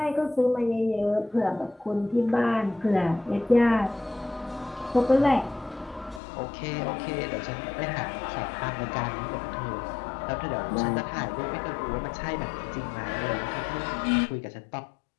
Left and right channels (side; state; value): right; drops out; at 6.2 s